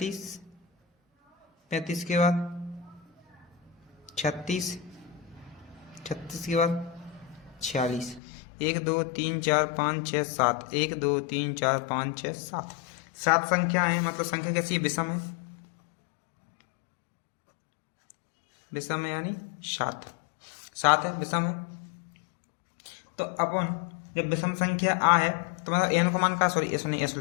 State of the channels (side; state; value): right; drops out; at 8.2 s